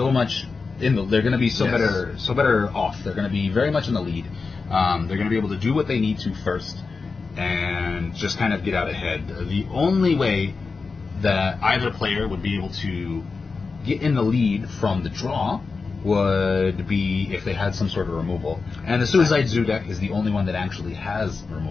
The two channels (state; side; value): quieter; right; 4.5 dB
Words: much they're going to be better off. They're going to be very much in the lead. They're going to be able to do what they need to first and just kind of get out ahead. The only way that either player would be able to get in the lead from the draw would be if they had some sort of removal. And the Suicide Zoo deck is the only one that actually has